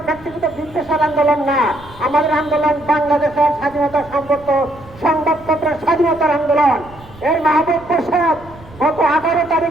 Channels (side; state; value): right; noise; rumble, 21 dB below the sound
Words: ব্যক্তিগত বিদ্বেষের আন্দোলন না, আমাদের আন্দোলন বাংলাদেশের স্বাধীনতা সম্পর্ক সংবাদপত্রের স্বাধীনতার আন্দোলন। এই মাহবুব মোর্শেদ গত 18